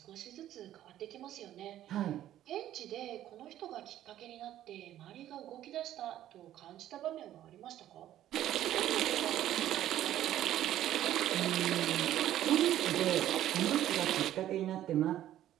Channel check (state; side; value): quieter; left; 12.5 dB